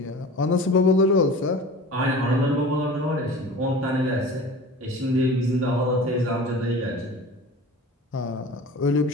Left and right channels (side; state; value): both; normal; correlation 0.38